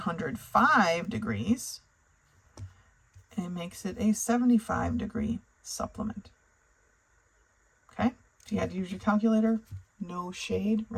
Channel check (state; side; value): identical; both; correlation 1.00